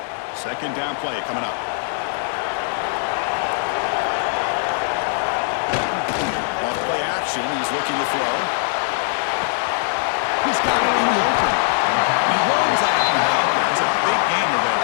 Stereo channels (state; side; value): silent; right; digital silence